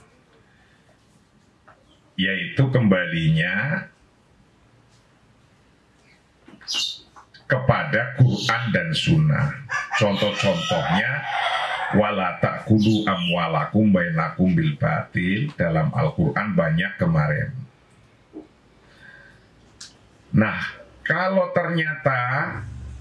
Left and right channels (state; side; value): identical; both; correlation 1.00